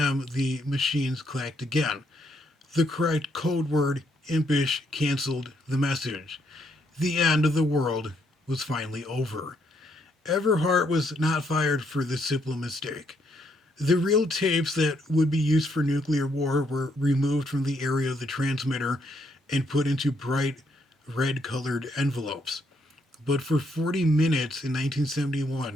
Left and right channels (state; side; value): normal; both; correlation 0.73